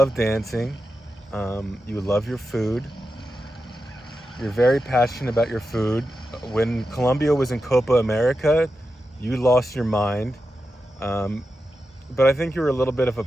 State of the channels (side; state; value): both; normal; correlation 0.89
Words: dancing. You love your food. You're very passionate about your food. When Colombia was in Copa America, you lost your mind. Um, but I think you were a little bit of a